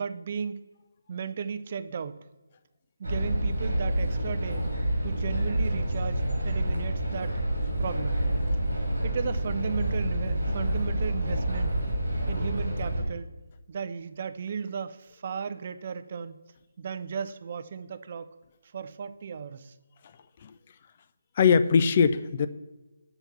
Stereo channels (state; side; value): inverted; both; correlation -0.80